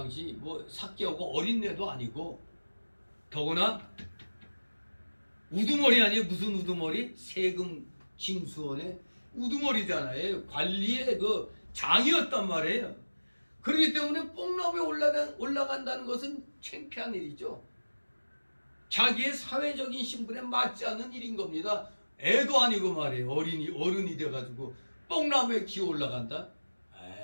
삭개오가 어린애도 아니고, 더구나 우두머리 아니에요. 무슨 우두머리? 세금 징수원의 우두머리잖아요. 관리의 그 장이었단 말이에요. 그렇기 때문에 뽕나무에 올라간다는 것은 창피한 일이죠. 자기의 사회적인 신분에 맞지 않는 일인 겁니다. 애도 아니고 말이에요. 어른이 돼가지고 뽕나무에 기어 올라간다?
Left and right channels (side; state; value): both; inverted; correlation -1.00